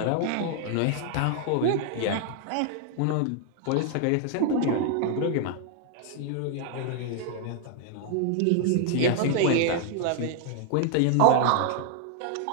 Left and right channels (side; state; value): both; different; correlation 0.00